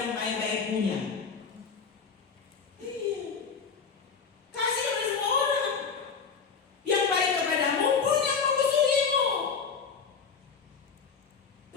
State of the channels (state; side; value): quieter; right; 5.8 dB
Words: baik-baik punya. Kasih kepada semua orang. Yang baik kepadamu pun yang memusuhimu.